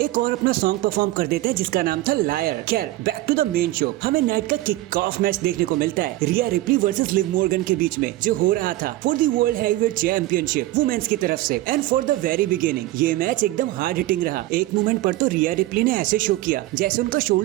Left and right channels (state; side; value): quieter; left; 16.8 dB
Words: एक और अपना सॉन्ग परफॉर्म कर देते हैं जिसका नाम था लायर। खैर back to the main show, हमें नाइट का किक ऑफ मैच देखने को मिलता है Rhea Ripley versus Liv Morgan के बीच में, जो हो रहा था for the world heavyweight championship women's की तरफ से। And for the very beginning ये मैच एकदम हार्ड हिटिंग रहा। एक मोमेंट पर तो रिया रिप्ली ने ऐसे शो किया जैसे उनका